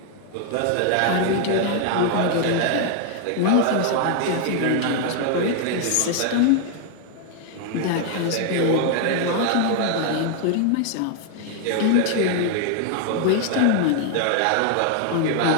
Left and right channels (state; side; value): different; both; correlation 0.00